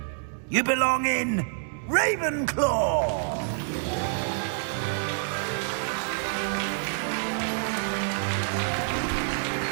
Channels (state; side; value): silent; left; digital silence